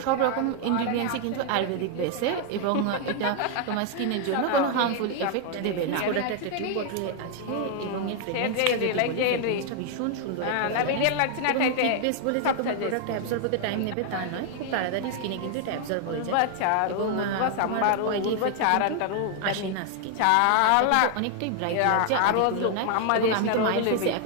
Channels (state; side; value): different; both; correlation 0.00